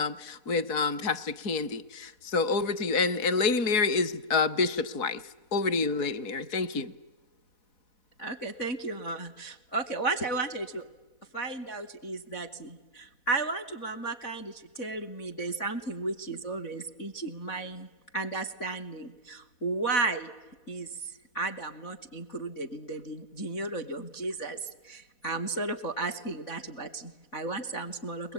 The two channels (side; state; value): right; late; 4.1 ms